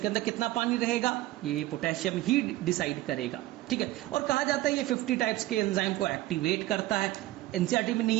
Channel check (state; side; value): quieter; left; 16.6 dB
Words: के अंदर कितना पानी रहेगा ये पोटेशियम ही डिसाइड करेगा। ठीक है, और कहा जाता है ये 50 टाइप्स के एंजाइम को एक्टिवेट करता है। एनसीईआरटी में